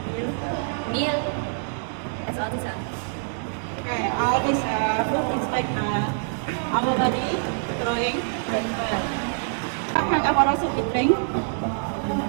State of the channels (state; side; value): silent; left; digital silence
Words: Meal. That's all this is. Okay, all this food is like our body growing very well. Sometimes our also we drink.